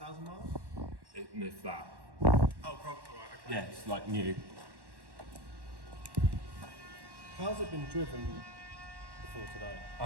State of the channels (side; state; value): left; late; 1.1 ms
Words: miles? If that. Oh, probably, right, okay. Yeah, it's like new. How's it been driven before today?